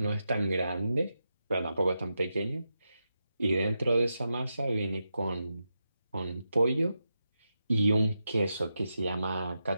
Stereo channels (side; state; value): both; inverted; correlation -0.88